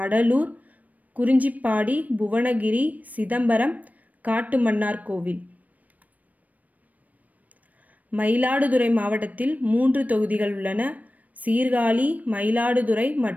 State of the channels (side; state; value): left; late; 0.074 ms